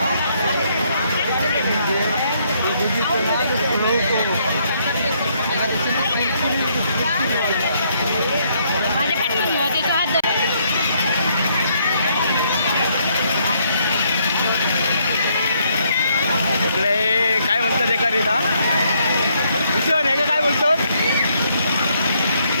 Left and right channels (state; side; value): inverted; both; correlation -0.71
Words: इकडे काय म्हणतात एका रेता भूषण हे काय बोलतो